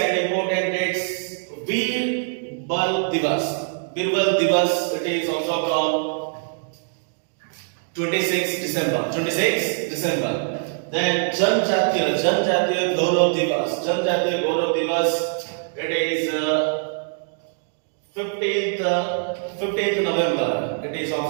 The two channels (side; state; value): left; silent; digital silence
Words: Birbal Divas. Birbal Divas, it is also on 26 December. Then Janjatiya Gaurav Divas. It is 15th November. It is